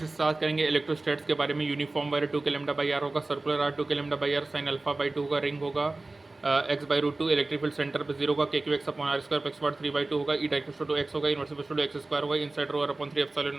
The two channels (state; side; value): quieter; left; 3.1 dB